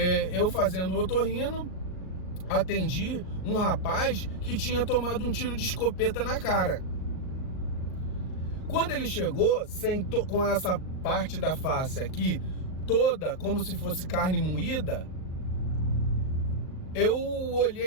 eu fazendo otorrino, atendi um rapaz que tinha tomado um tiro de escopeta na cara. Quando ele chegou, com essa parte da face aqui, toda como se fosse carne moída, eu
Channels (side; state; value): right; late; 38 ms